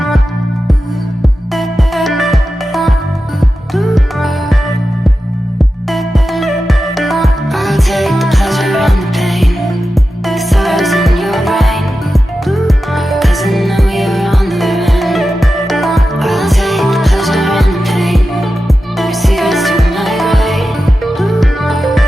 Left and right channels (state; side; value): normal; both; correlation 0.92